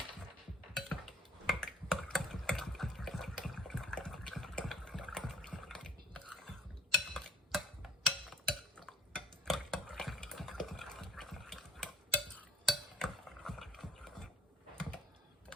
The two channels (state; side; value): normal; both; correlation 0.51